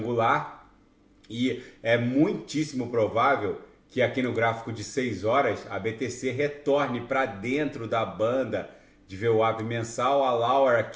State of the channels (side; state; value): both; identical; correlation 1.00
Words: e é muitíssimo provável que aqui no gráfico de 6 horas a BTC retorne para dentro da banda de VWAP mensal. A Lauer